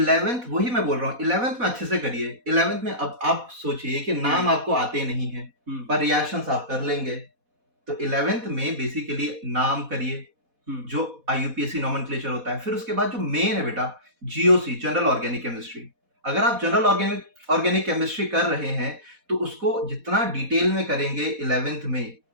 वही मैं बोल रहा हूँ, 11th में अच्छे से करिए। 11th में अब आप सोचिए कि नाम आपको आते नहीं है पर रिएक्शंस आप कर लेंगे, तो 11th में बेसिकली नाम करिए जो IUPAC नॉमेनक्लेचर होता है। फिर उसके बाद जो मेन है बेटा, GOC, जनरल ऑर्गेनिक केमिस्ट्री। अगर आप जनरल ऑर्गेनिक केमिस्ट्री कर रहे हैं तो उसको जितना डिटेल में करेंगे 11th में,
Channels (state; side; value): late; left; 4.1 ms